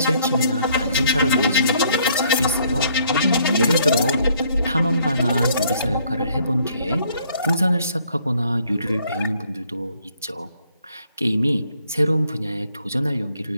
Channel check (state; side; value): inverted; both; correlation -0.65